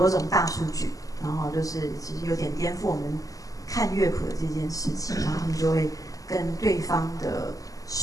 种大数据，然后就是其实有点颠覆我们看乐谱的这件事情，然后他们就会跟对方的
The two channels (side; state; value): right; late; 0.17 ms